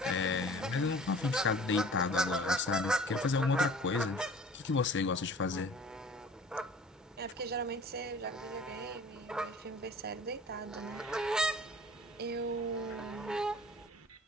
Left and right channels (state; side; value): normal; both; correlation 0.46